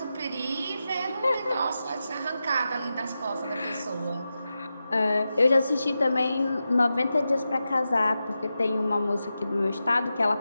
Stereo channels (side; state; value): both; inverted; correlation -0.91